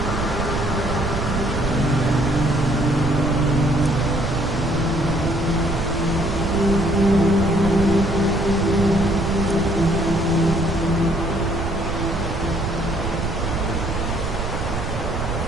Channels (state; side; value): noise; right; rumble, 4 dB below the sound